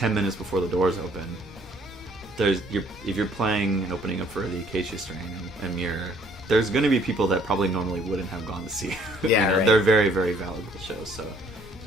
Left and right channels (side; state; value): both; normal; correlation 0.61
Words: minutes before the doors open. If you're playing and opening up for the Acacia Strain and Amir, there's going to be people that probably normally wouldn't have gone to see. Yeah, right. They're very, very valuable shows, so